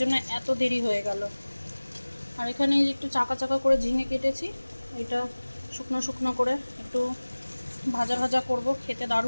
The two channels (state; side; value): inverted; both; correlation -1.00